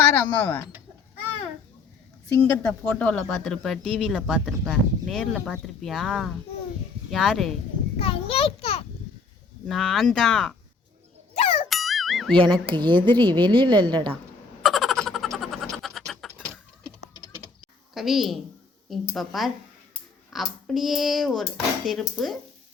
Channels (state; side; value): quieter; right; 4.3 dB